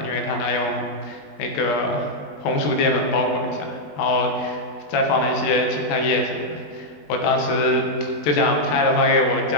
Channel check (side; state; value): right; late; 20 ms